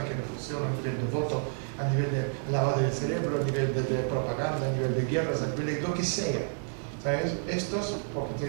qué no funciona, a nivel de voto, a nivel de lavado del cerebro, a nivel de propaganda, a nivel de guerras, a nivel de lo que sea. ¿Sabes? Estos porque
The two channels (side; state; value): left; silent; digital silence